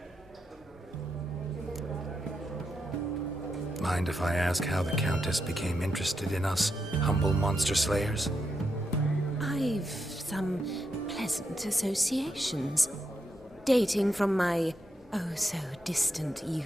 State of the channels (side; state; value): both; normal; correlation 0.83